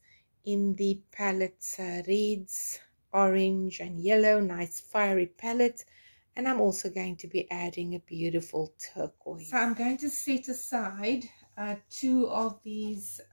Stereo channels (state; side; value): inverted; both; correlation -1.00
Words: in the palette, reds, orange and yellow, nice fiery palette. And I'm also going to be adding a beautiful turquoise. So I'm going to set aside 2 of these